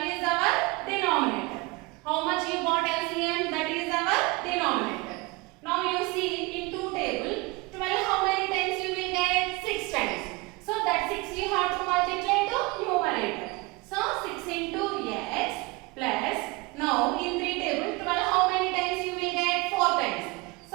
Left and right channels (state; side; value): quieter; left; 24.4 dB